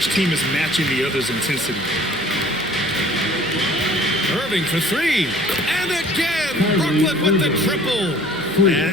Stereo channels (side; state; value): left; noise; hum, 24 dB below the sound